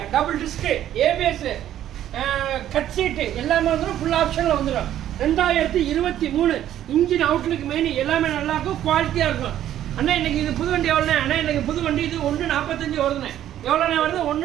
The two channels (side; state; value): left; quieter; 11.7 dB